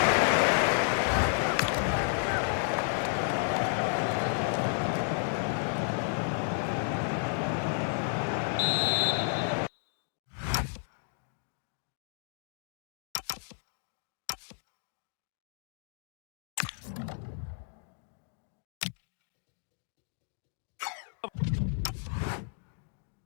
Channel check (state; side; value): silent; right; 56 dB below the other